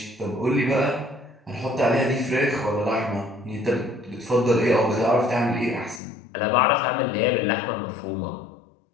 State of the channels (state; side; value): drops out; right; at 6.0 s